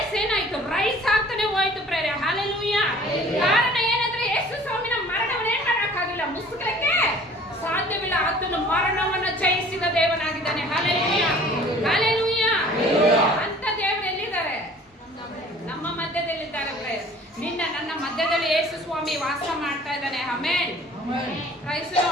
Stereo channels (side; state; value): both; normal; correlation 0.50